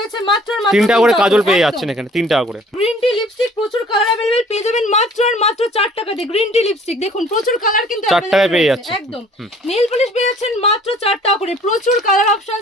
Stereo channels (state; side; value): normal; both; correlation 0.53